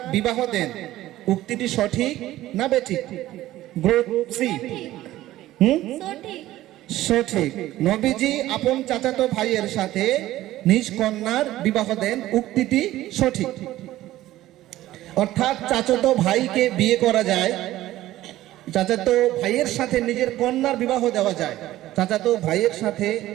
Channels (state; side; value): quieter; left; 15.2 dB